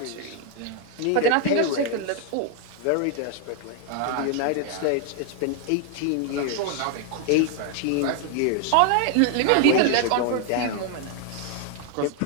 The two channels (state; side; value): different; both; correlation 0.00